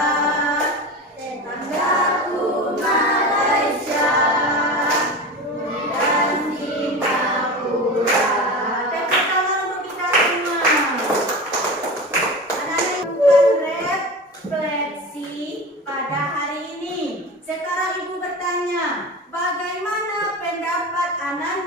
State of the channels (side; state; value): both; normal; correlation 0.29